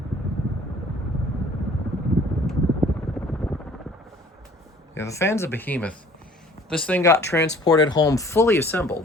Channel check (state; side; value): normal; both; correlation 0.53